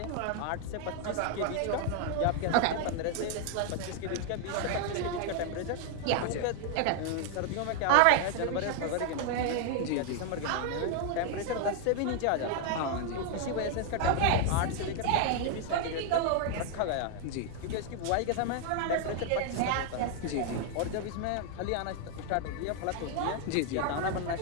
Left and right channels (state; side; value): different; both; correlation 0.00